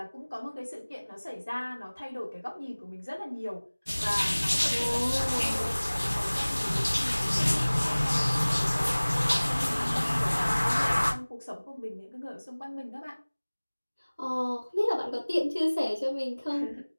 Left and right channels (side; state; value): both; inverted; correlation -1.00